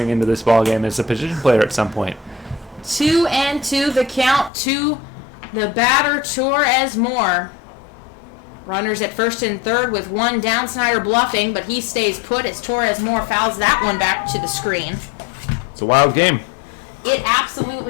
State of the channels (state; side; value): drops out; right; at 4.5 s